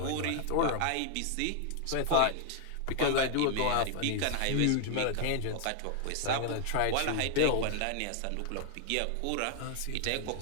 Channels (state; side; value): different; both; correlation 0.00